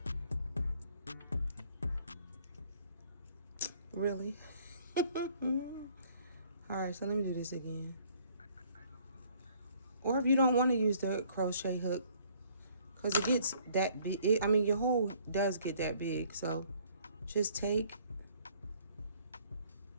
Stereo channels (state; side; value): inverted; both; correlation -0.61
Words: Really? Alright, so let me do this again. Or if you don't want to use the crochet hook, because it gets that big. I mean, your hole does get that big. So just take